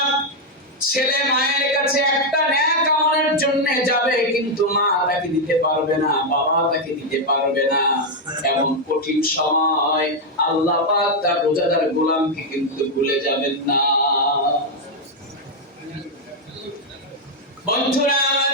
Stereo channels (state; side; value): normal; both; correlation 0.01